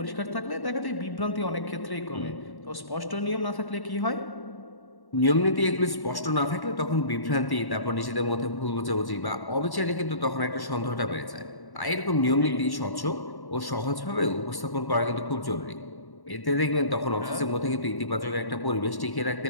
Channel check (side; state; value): right; late; 1.1 ms